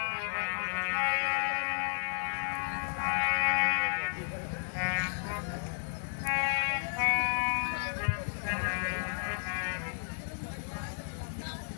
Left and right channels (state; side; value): silent; right; digital silence